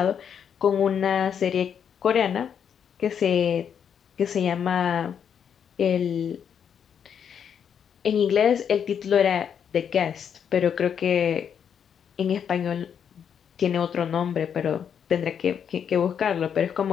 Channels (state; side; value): quieter; right; 7.9 dB